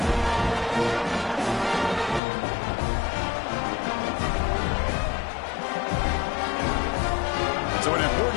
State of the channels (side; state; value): right; drops out; at 2.2 s